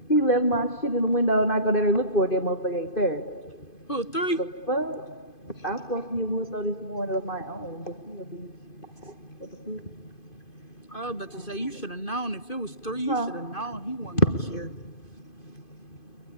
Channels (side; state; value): right; late; 2.5 ms